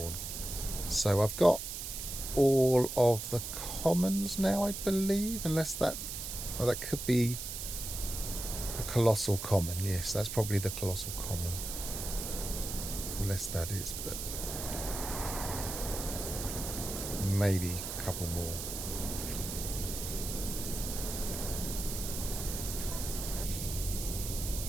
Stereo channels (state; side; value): noise; right; hiss, 6 dB below the sound